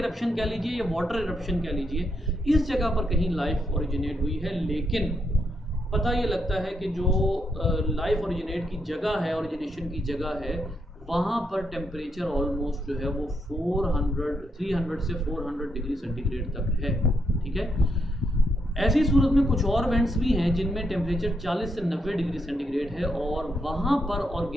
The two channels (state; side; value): normal; both; correlation 0.79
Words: कह लीजिए या वाटर इरप्शन कह लीजिए, इस जगह पर कहीं लाइफ ओरिजिनेट हुई है। लेकिन पता ये लगता है कि जो लाइफ ओरिजिनेट की जगह है, ओरिजिनेशन की जगह है, वहाँ पर टेम्परेचर ऑलमोस्ट जो है वो 300 से 400 डिग्री सेंटीग्रेड तक है, ठीक है। ऐसी सूरत में कुछ और वेंट्स भी हैं जिनमें टेम्परेचर 40 से 90 डिग्री सेंटीग्रेड है और वहाँ पर